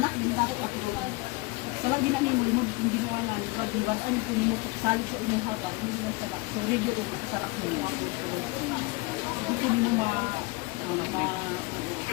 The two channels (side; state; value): right; quieter; 24.2 dB